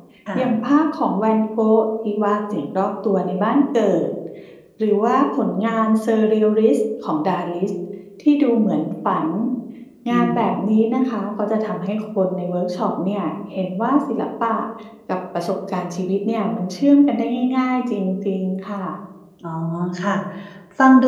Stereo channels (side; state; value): both; identical; correlation 1.00